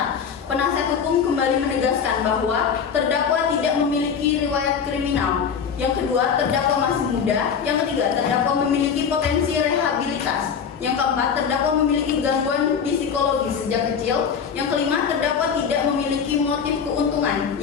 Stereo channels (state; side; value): quieter; right; 6.8 dB